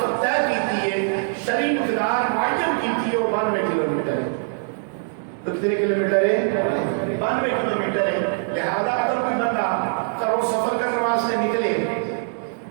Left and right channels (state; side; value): silent; left; digital silence